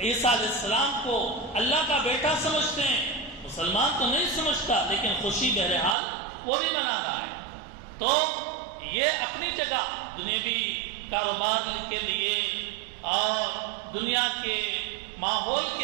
علیہ السلام کو اللہ کا بیٹا سمجھتے ہیں۔ مسلمان تو نہیں سمجھتا، لیکن خوشی بہرحال وہ بھی منا رہا ہے۔ تو یہ اپنی جگہ دنیوی کاروبار کے لیے اور دنیا کے ماحول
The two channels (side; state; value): left; drops out; at 6.0 s